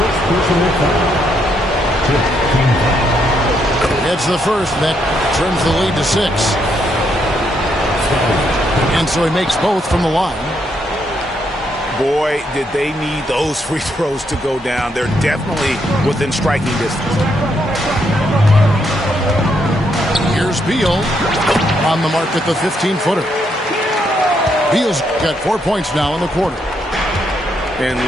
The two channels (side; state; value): both; normal; correlation 0.76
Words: It's the first that trims the lead to 6. And so he makes both from the line. Boy, did they need those free throws to go down. They're definitely within striking distance. Here's Beal on the mark at the 15-footer. Beal's got 4 points now in the quarter. And